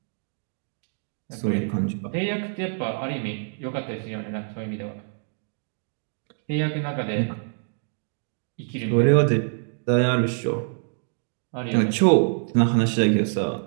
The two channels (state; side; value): silent; left; digital silence